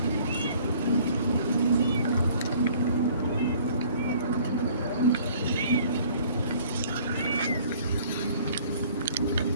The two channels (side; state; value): both; inverted; correlation -0.55